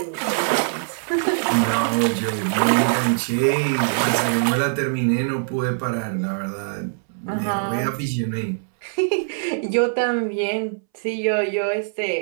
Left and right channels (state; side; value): silent; left; 64 dB below the other